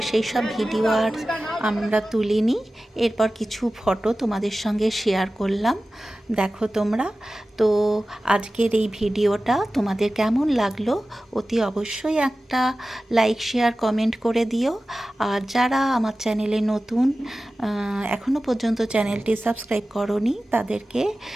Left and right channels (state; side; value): normal; both; correlation 0.95